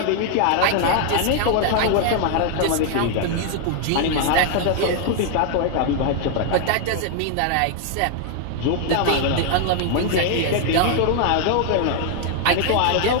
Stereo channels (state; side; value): different; both; correlation 0.00